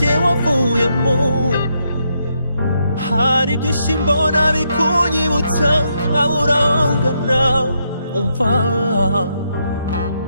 wavuyemo hari byinshi mbona bikunyibutsa nkabura aho ngana umva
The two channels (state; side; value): inverted; both; correlation -0.79